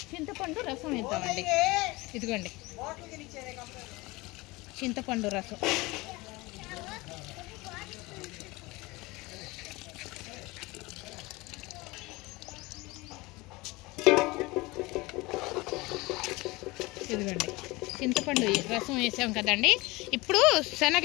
చింతపండు రసం వేద్దామండి. ఇదిగోండి చింతపండు రసం ఇదిగోండి చింతపండు రసం వేసాం కదండి. ఇప్పుడు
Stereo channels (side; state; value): right; quieter; 22.6 dB